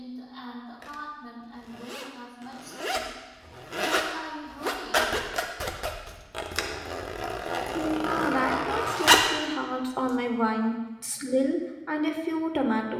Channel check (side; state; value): both; identical; correlation 1.00